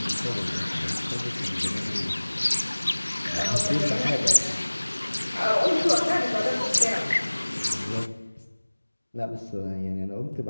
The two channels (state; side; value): inverted; both; correlation -1.00